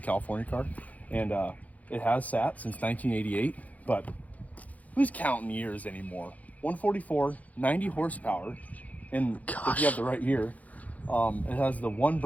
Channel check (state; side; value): late; right; 0.074 ms